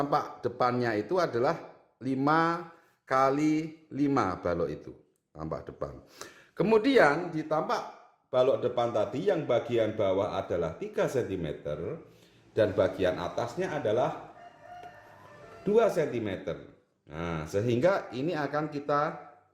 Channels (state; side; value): identical; both; correlation 1.00